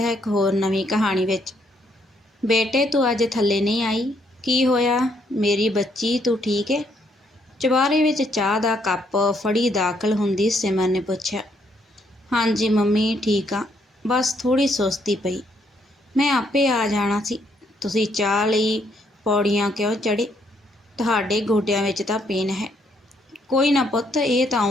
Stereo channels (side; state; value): both; normal; correlation 0.72